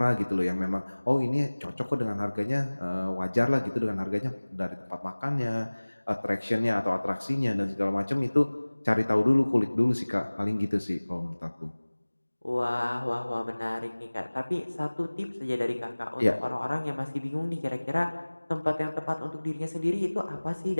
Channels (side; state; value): both; inverted; correlation -1.00